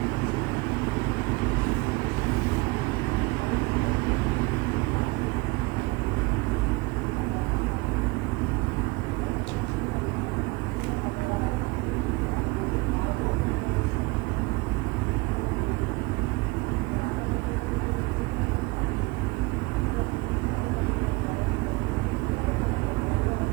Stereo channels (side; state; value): left; quieter; 24.3 dB